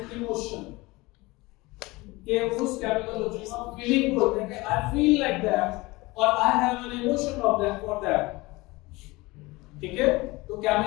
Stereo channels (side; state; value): right; quieter; 22.2 dB